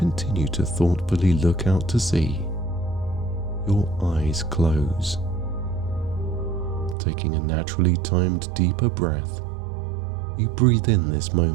to thoughtfully look out to sea, your eyes close. Taking a naturally timed deeper breath, you breathe in this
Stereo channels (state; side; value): drops out; left; at 7.0 s